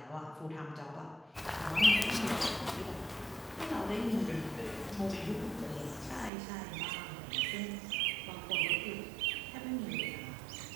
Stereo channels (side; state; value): left; drops out; at 6.3 s